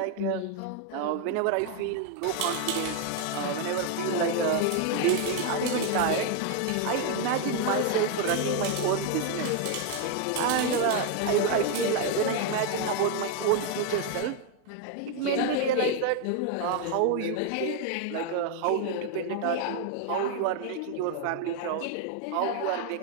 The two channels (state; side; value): different; both; correlation 0.01